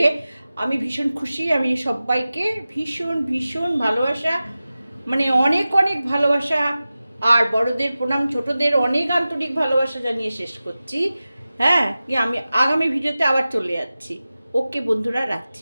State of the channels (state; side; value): inverted; both; correlation -0.96